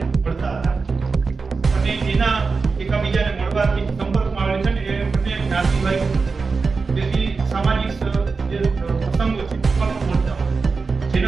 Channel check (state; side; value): quieter; left; 4.5 dB